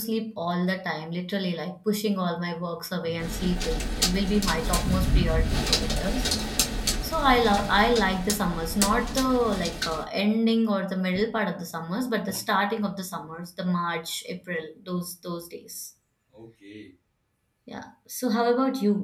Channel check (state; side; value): identical; both; correlation 1.00